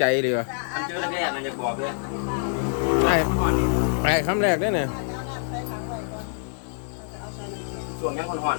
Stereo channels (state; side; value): silent; right; digital silence